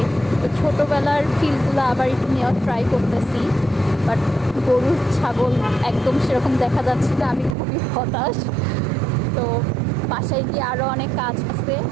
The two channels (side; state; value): left; drops out; at 7.6 s